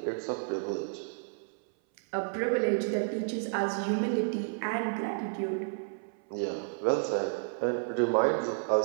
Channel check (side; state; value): left; silent; 57 dB below the other